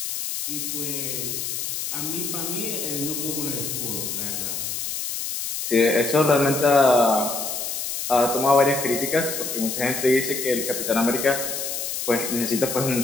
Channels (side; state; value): left; noise; hiss, 4 dB below the sound